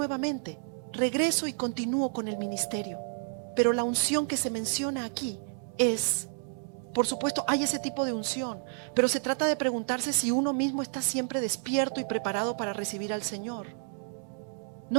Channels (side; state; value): left; silent; 55 dB below the other